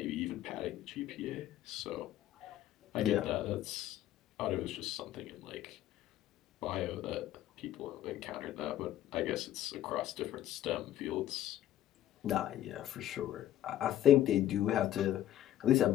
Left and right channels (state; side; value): quieter; right; 12.5 dB